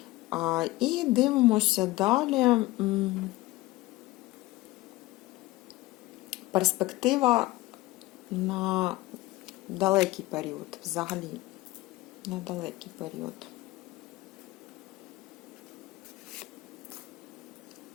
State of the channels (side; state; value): right; quieter; 19.3 dB